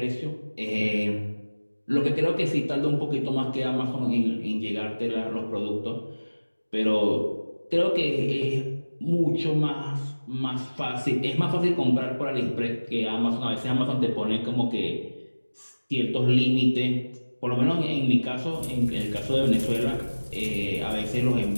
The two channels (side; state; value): both; inverted; correlation -1.00